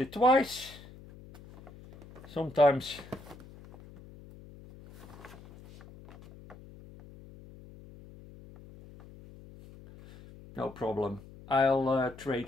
twice. Sometimes no problem. I'll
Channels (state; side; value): noise; left; hum, 19 dB below the sound